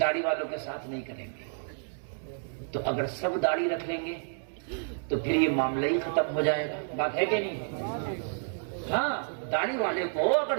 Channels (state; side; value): silent; left; digital silence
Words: والوں کے ساتھ نہیں کریں گے. تو اگر سب داڑھی رکھ لیں گے تو پھر یہ معاملہ ہی ختم ہو جائے گا. بات ہے کہ نہیں؟ ہاں، داڑھی والے کو اگر